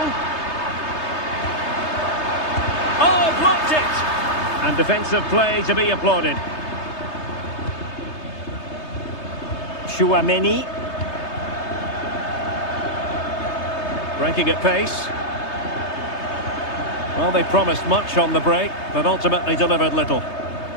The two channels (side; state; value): right; late; 3.3 ms